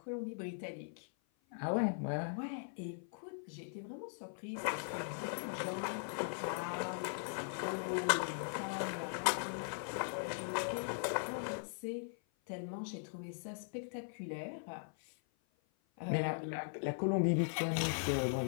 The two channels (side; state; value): right; silent; 51 dB below the other